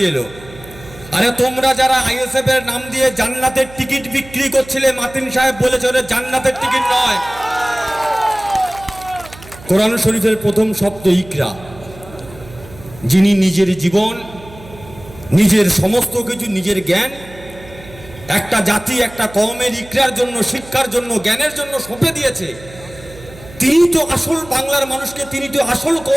এলো? আরে তোমরা যারা আইএসএফ এর নাম দিয়ে জান্নাতের টিকিট বিক্রি করছিলে, মাতিন সাহেব বলেছে ওটা জান্নাতের টিকিট নয়। কোরআন শরীফের প্রথম শব্দ ইকরা, যিনি নিজের জীবন, নিজের সমস্ত কিছু, নিজের জ্ঞান একটা জাতি, একটা কওমের ইকরার জন্য, শিক্ষার জন্য, জ্ঞানের জন্য সঁপে দিয়েছে। তিনি তো আসল বাংলার মানুষকে, তিনি তো আসল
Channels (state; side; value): noise; right; hum, 19 dB below the sound